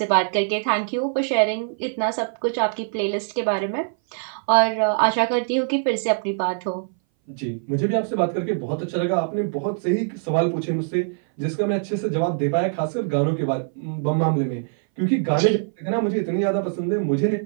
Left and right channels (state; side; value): silent; left; 59 dB below the other